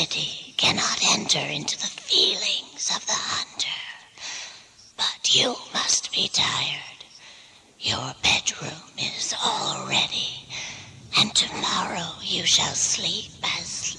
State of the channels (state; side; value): identical; both; correlation 1.00